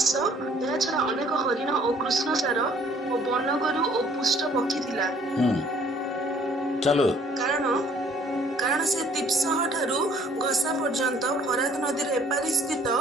ଏହା ଛଡା ଅନେକ ହରିଣ ଓ କୃଷ୍ଣସାର ଓ ବନଗୋରୁ ଓ ପୁଷ୍ଟ ପକ୍ଷୀ ଥିଲା। चलो କାରଣ ସେ ତିପ୍ସହ ଠାରୁ ଘସା ପର୍ଯ୍ୟନ୍ତ ଫରାତ ନଦୀର ଏପାରି ସ୍ଥିତ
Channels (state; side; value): normal; both; correlation 0.58